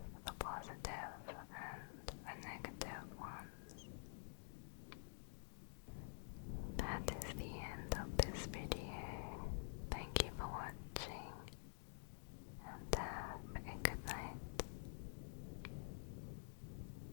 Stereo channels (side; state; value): right; silent; digital silence